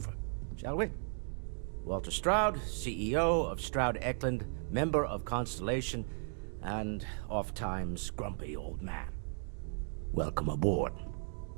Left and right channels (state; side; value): silent; left; 54 dB below the other